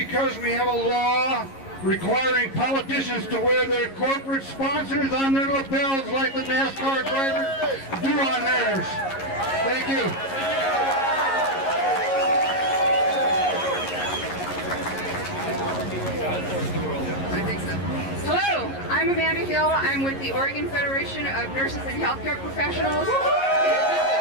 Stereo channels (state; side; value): late; right; 11 ms